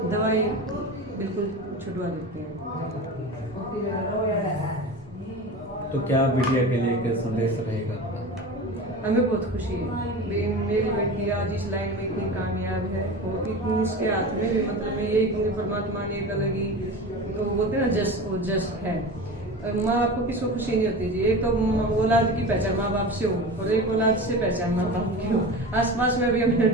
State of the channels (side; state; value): both; normal; correlation 0.31